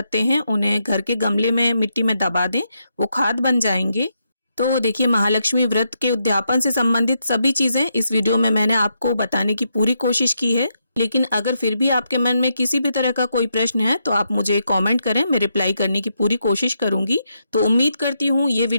हैं उन्हें घर के गमले में मिट्टी में दबा दें, वो खाद बन जाएंगे। तो देखिए, महालक्ष्मी व्रत के उद्यापन से संबंधित सभी चीजें इस वीडियो में मैंने आपको बताने की पूरी कोशिश की है। लेकिन अगर फिर भी आपके मन में किसी भी तरह का कोई प्रश्न है तो आप मुझे कमेंट करें, मैं रिप्लाई करने की पूरी कोशिश करूंगी। तो उम्मीद करती हूँ ये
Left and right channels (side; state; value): both; inverted; correlation -0.81